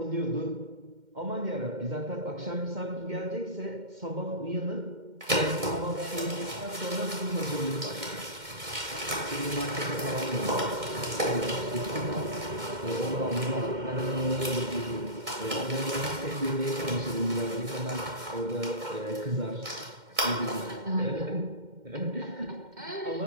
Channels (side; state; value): left; late; 2.1 ms